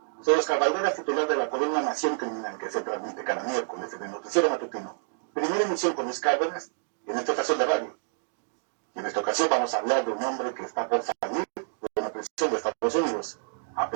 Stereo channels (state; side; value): silent; left; digital silence